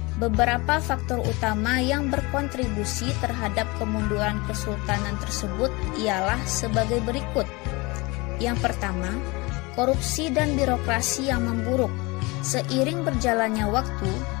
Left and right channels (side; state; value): right; quieter; 25.1 dB